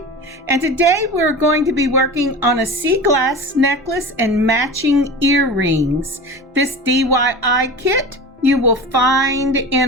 and today we're going to be working on a sea glass necklace and matching earrings. This DIY kit you will find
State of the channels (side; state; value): both; normal; correlation 0.32